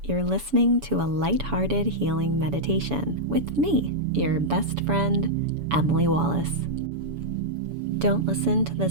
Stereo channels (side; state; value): left; late; 7.0 ms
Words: you're listening to a lighthearted healing meditation with me, your best friend, Emily Wallace. Don't listen to